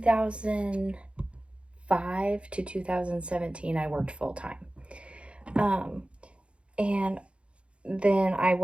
to 2017, I worked full-time. And then I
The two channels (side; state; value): left; late; 0.059 ms